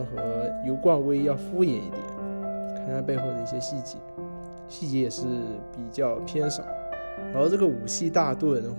和油罐威要敷衍一点，看它背后的一些细节也是比较偏少。然后这个武器大盾的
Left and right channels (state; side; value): inverted; both; correlation -1.00